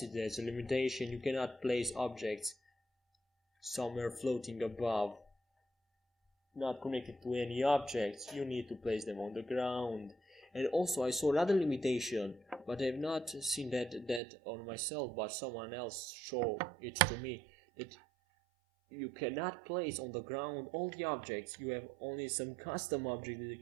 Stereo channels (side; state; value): left; drops out; at 14.2 s